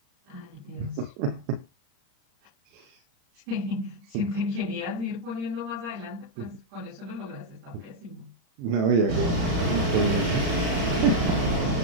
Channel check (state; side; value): late; left; 35 ms